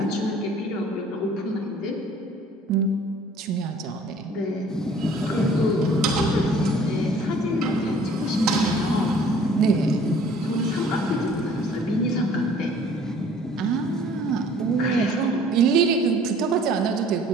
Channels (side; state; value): both; normal; correlation 0.53